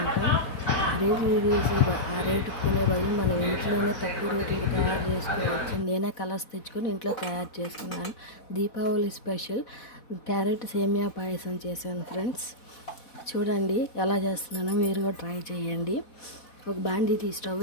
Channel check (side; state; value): right; late; 4.1 ms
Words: ఆ రేట్లు చూసి ఆ రేటుకి కొనే బదులు మనం ఇంట్లోనే తక్కువ రేట్లకి తయారు చేసుకోవచ్చని నేనే కలర్స్ తెచ్చుకొని ఇంట్లో తయారు చేసుకున్నాను. దీపావళి స్పెషల్ క్యారెట్ సేమియా పాయసం చేశాను ఫ్రెండ్స్. చూడండి ఎలా చేస్తున్నానో మీరు కూడా ట్రై చేయండి. ఒక బాండీ స్టవ్